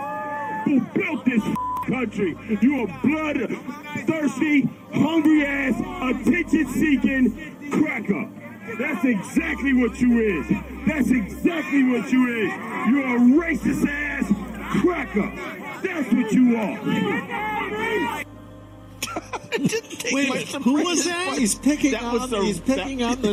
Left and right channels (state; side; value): identical; both; correlation 1.00